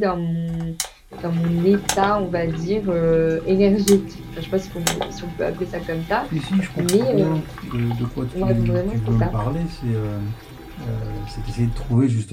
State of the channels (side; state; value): both; identical; correlation 1.00